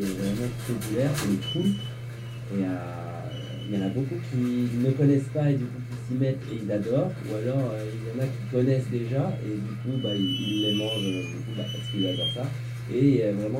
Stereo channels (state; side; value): identical; both; correlation 1.00